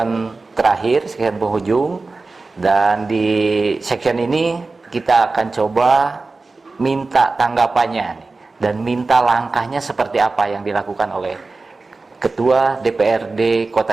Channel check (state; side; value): quieter; left; 3.7 dB